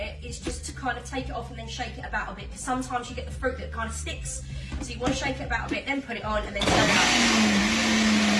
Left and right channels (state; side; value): identical; both; correlation 1.00